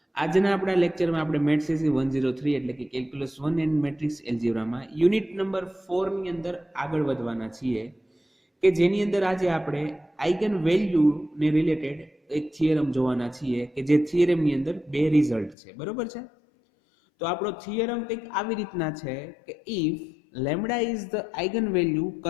આજના આપણા લેક્ચરમાં આપણે મેથ્સ સીસી 103 એટલે કે કેલ્ક્યુલસ 1 એન્ડ મેટ્રિક્સ એલ્જિબ્રામાં યુનિટ નંબર 4 ની અંદર આગળ વધવાના છીએ કે જેની અંદર આજે આપણે આઇગન વેલ્યુ ને રિલેટેડ એક થિયરમ જોવાના છીએ કે જે થિયરમની અંદર બે રિઝલ્ટ છે. બરોબર છે? તો આપણો થિયરમ કંઈક આવી રીતના છે કે if lambda is the eigen value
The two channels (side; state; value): right; drops out; at 15.6 s